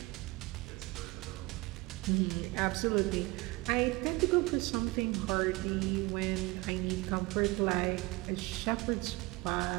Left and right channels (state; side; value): quieter; left; 23.1 dB